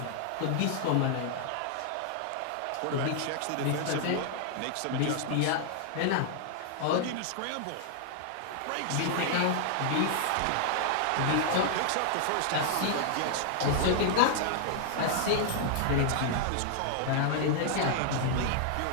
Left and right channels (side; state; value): both; different; correlation -0.01